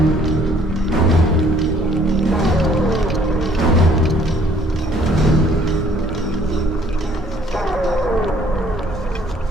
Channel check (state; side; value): normal; both; correlation 0.60